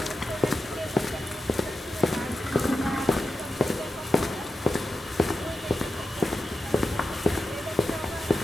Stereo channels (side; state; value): both; normal; correlation 0.89